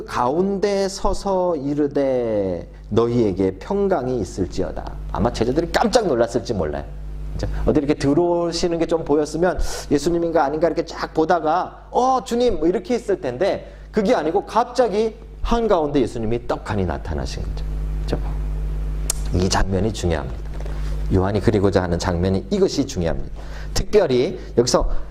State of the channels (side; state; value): both; identical; correlation 1.00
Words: 가운데 서서 이르되 너희에게 평강이 있을지어다. 아마 제자들이 깜짝 놀랐을지 몰라요. 어디 이렇게 들어오시는 게 좀 보였으면 예수님인가 아닌가 이렇게 쫙 보다가 주님 뭐 이렇게 했을 텐데 그게 아니고 갑자기 한가운데 예수님이 떡하니 나타나신 거죠. 그렇죠? 이 장면이 중요합니다. 요한이 그리고자 하는 장면이 이것이 중요합니다. 특별히 여기서